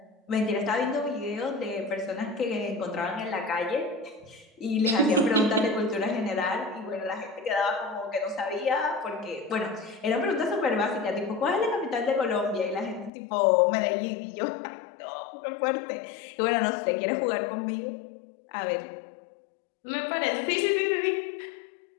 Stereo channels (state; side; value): drops out; right; at 13.1 s